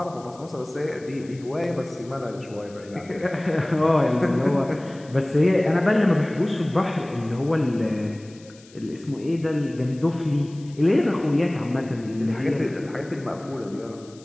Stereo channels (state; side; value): noise; left; hiss, 25 dB below the sound